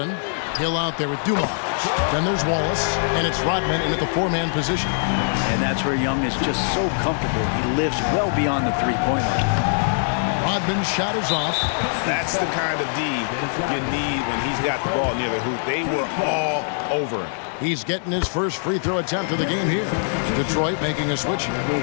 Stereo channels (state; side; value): silent; right; digital silence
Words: Hill out there with Dumas. Then there's Wallace, and it's Rodman in at the four-man position. And that's where Young is just so comfortable. He lives well beyond the three-point line. Rodman's shot is off. That's the kind of D you need when he's got the ball near the hoop. They were all over him. He's getting his first free throw attempt of the game here. Detroit making a switch here.